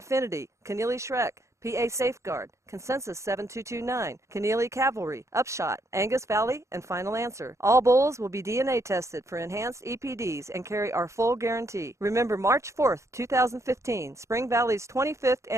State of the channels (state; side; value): late; left; 0.14 ms